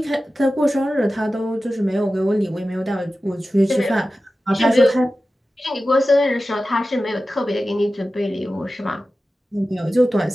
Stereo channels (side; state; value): both; normal; correlation 0.94